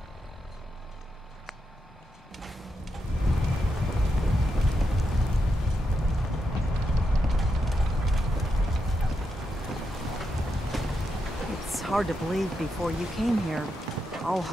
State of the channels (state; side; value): normal; both; correlation 0.84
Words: It's hard to believe before you came here, all